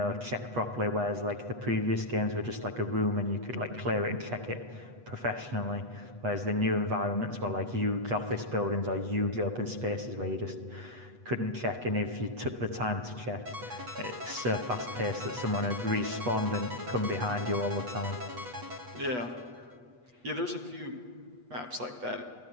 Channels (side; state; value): left; late; 8.2 ms